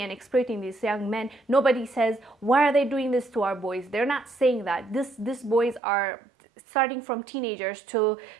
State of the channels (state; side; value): drops out; left; at 5.8 s